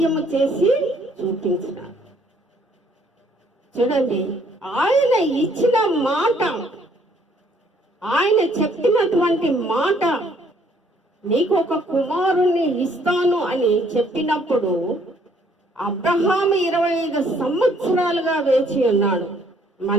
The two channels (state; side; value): normal; both; correlation 0.64